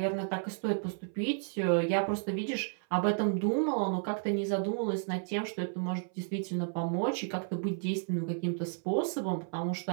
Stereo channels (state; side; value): silent; left; 56 dB below the other